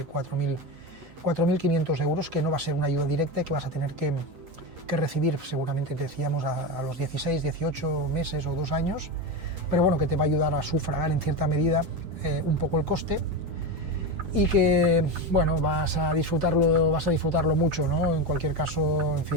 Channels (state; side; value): late; left; 8.1 ms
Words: 4.500 euros, que no va a ser una ayuda directa, que vas a tener que recibir seguramente, decíamos, a los 16, 18 meses o 2 años, pero bueno, que te va a ayudar a sufragar en cierta medida un poco el coste, y que, bueno, vas a disfrutarlo mucho, ¿no? En cualquier caso, en